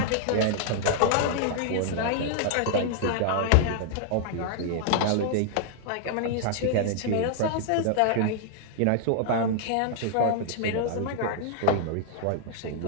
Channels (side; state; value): both; different; correlation -0.01